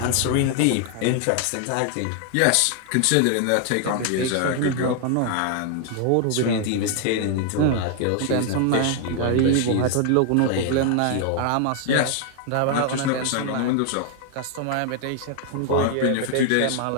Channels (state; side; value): different; both; correlation 0.00